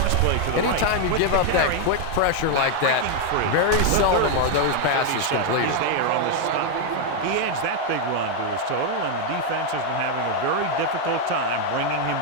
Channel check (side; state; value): both; different; correlation 0.01